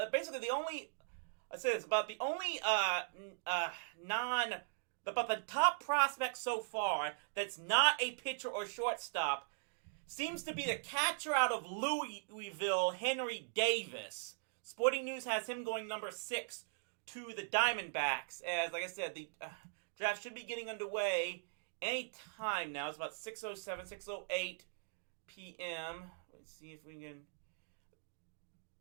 basically the only the top prospect so far that's not a pitcher or shortstop seems to be the catcher out of Louisville, Henry Davis. Sporting News has him going #6 to the Diamondbacks. As, like I said, the draft should be getting underway any time now. It's about 6:07, 6:08 p.m. Let's see if we can...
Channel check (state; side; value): silent; left; digital silence